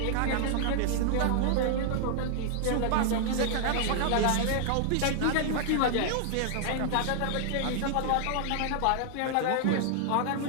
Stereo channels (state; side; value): different; both; correlation -0.01